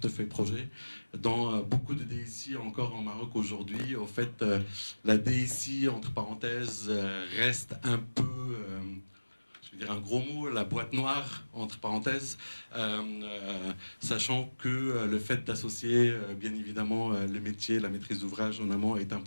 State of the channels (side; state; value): both; inverted; correlation -1.00